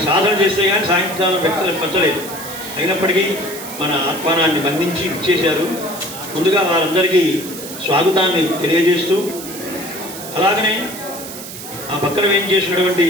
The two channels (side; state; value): right; noise; hiss, 11 dB below the sound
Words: సాధన చేస్తే కానీ సాయంకాలం వ్యక్తులకు పచ్చలేదు. అయినప్పటికీ మన ఆహ్వానాన్ని బంధించి ఇచ్చేశారు. ముందుగా వారందరికీ స్వాగతాన్ని తెలియజేస్తూ, అలాగనే ఆ పక్కన ఏం చేసినటువంటి